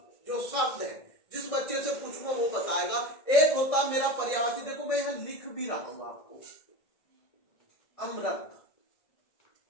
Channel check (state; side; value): late; right; 1.6 ms